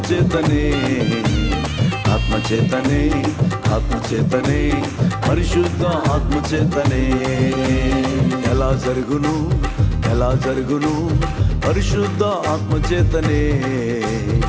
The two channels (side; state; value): both; identical; correlation 1.00